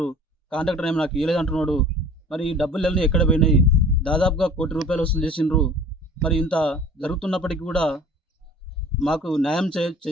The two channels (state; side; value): normal; both; correlation 0.46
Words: కాంట్రాక్టర్ ఏమో నాకు ఇవ్వలేదు అంటున్నాడు. మరి ఈ డబ్బులన్నీ ఎక్కడ పోయినాయి? దాదాపుగా ₹1 కోటి వసూలు చేసిండ్రు. మరి ఇంత జరుగుతున్నప్పటికీ కూడా మాకు న్యాయం